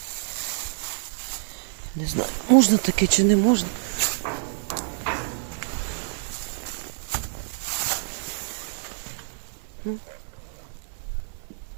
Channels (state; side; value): silent; left; 60 dB below the other